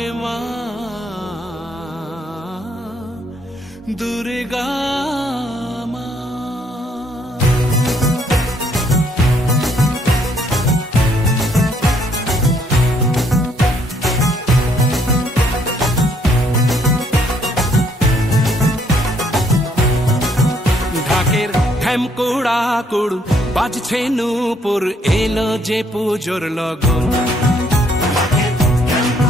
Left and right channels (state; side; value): normal; both; correlation 0.68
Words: মা দুর্গা মা। ঢাকের ঢ্যামকুড়া কুড় বাজছে নূপুর এলো যে পুজোর লগন।